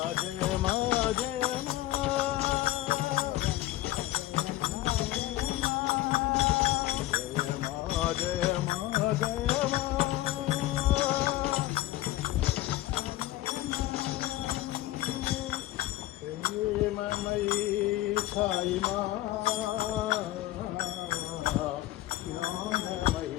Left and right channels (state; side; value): quieter; right; 16.1 dB